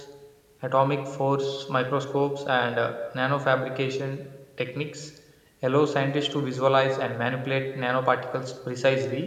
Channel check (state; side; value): identical; both; correlation 1.00